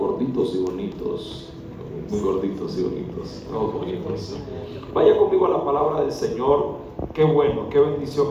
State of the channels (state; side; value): identical; both; correlation 1.00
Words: y bonitos. Muy gorditos y bonitos, todos bonitos. Vaya conmigo a la palabra del Señor. Qué bueno, qué